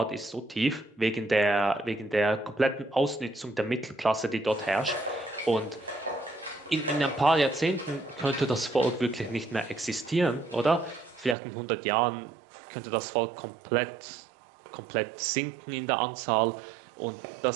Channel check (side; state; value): left; drops out; at 11.4 s